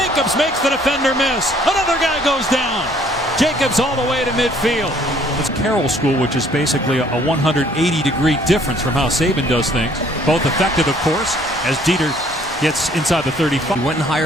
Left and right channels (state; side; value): normal; both; correlation 0.60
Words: makes the defender miss. Another guy goes down. Jacobs all the way to midfield. It's Carroll School, which is basically a 180-degree difference from how Saban does things. Both effective, of course, as Dieter gets inside the 35. He went and